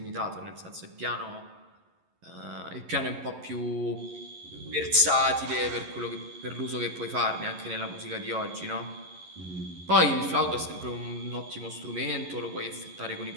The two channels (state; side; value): late; left; 11 ms